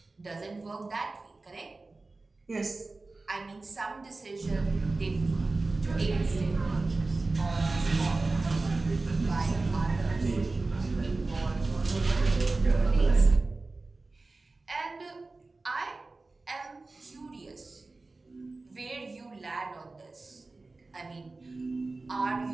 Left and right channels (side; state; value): left; quieter; 3.4 dB